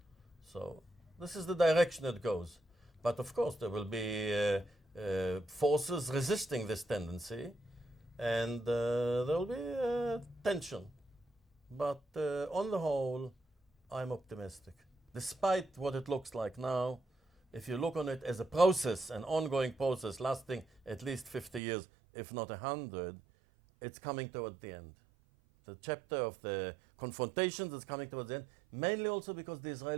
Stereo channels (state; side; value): drops out; left; at 21.6 s